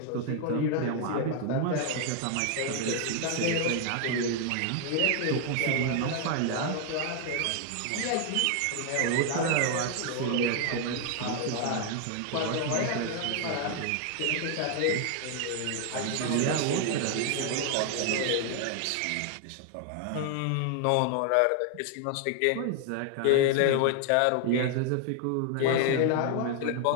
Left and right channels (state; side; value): different; both; correlation 0.00